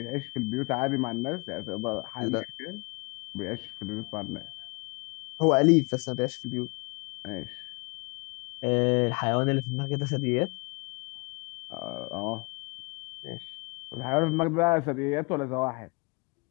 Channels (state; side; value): quieter; right; 30.2 dB